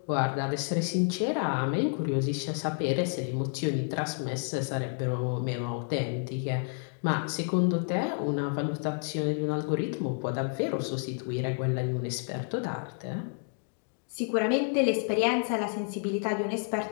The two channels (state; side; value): silent; right; 58 dB below the other